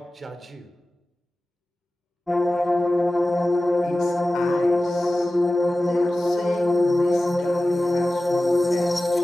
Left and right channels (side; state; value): both; normal; correlation 0.96